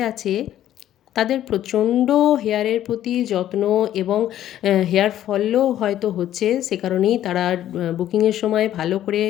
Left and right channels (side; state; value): right; quieter; 12.0 dB